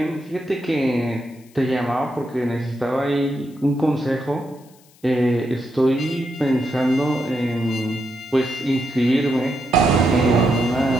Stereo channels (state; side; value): noise; left; hiss, 29 dB below the sound